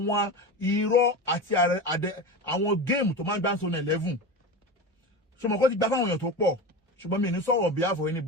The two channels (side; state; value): both; normal; correlation 0.25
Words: irọ́ àti àwọn géèmù tó máa ń gbá sọnù 11 ṣùgbọ́n kó ti gbá fáwọn èèyàn tó pọ̀ ṣùgbọ́n mi ní sọ̀rọ̀ behalf of